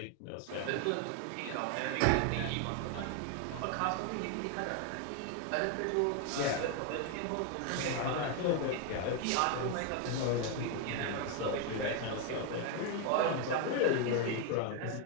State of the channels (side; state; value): both; different; correlation 0.01